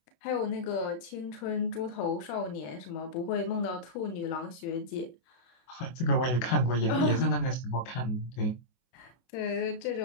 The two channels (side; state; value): right; late; 24 ms